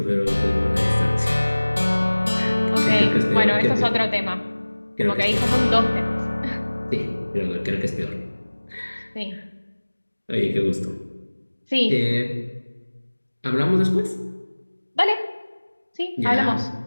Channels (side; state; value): both; inverted; correlation -1.00